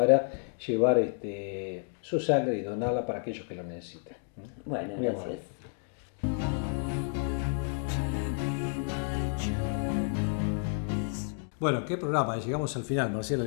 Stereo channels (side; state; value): right; silent; 57 dB below the other